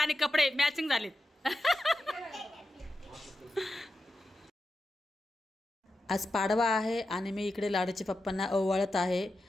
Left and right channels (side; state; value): both; normal; correlation 0.90